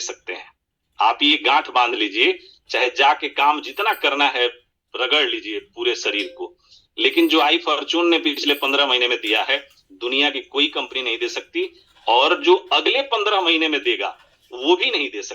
सकते हैं। आप ये गांठ बांध लीजिए, चाहे जाके काम जितना करना है रगड़ लीजिए पूरे शरीर को, लेकिन जो आई फॉर्चून ने पिछले 15 महीने में दिया है दुनिया की कोई कंपनी नहीं दे सकती, और जो अगले 15 महीने में देगा वो भी नहीं दे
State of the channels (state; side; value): identical; both; correlation 1.00